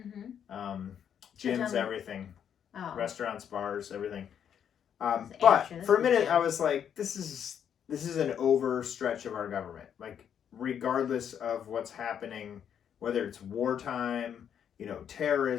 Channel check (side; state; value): right; quieter; 8.6 dB